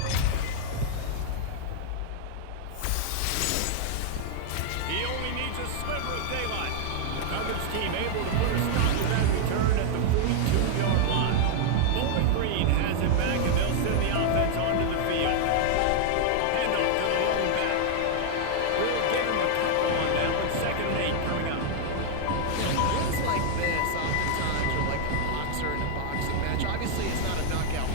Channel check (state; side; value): different; both; correlation 0.00